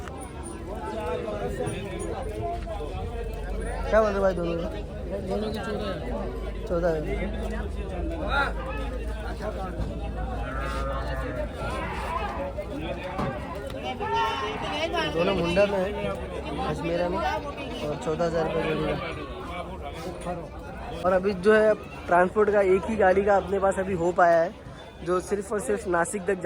क्या बोल रहे भाई दोनों की 14 दोनों मुंडा में है, अजमेरा में, और 14,000 रुपये जोड़ी का। और अभी जो है ट्रांसपोर्ट का एक ही गाड़ी का अपने पास अभी हो पाया है, जो सिर्फ और सिर्फ नासिक तक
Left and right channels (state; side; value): identical; both; correlation 1.00